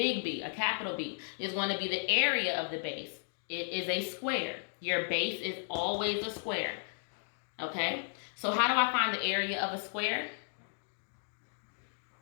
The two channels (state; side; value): silent; right; digital silence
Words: a capital B, is going to be the area of the base. It is a square. Your base is always a square. Okay? So how do I find the area of a square?